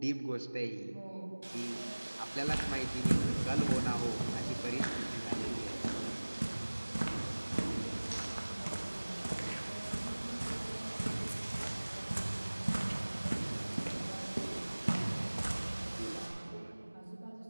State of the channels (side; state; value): both; inverted; correlation -1.00